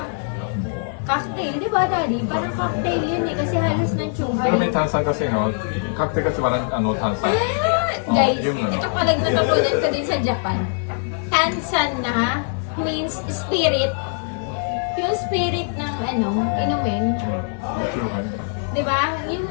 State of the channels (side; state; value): right; silent; 59 dB below the other